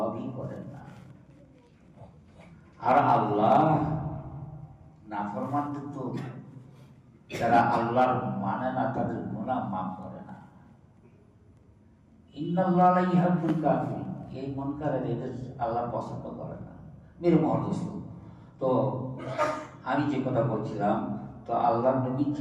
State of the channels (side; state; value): both; identical; correlation 1.00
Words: করেন না। আর আল্লাহ নাফরমানদের তো, যারা আল্লাহর মানে না, তাদের গুনাহ মাফ করে না। ইন্নাল্লাহা লা ইউহিব্বুল কাফিরিন, এই মুনকারের এদের আল্লাহ পছন্দ করে না। মেরে মহদোস্ত, তো আমি যে কথা বলছিলাম, তো আল্লাহ নবী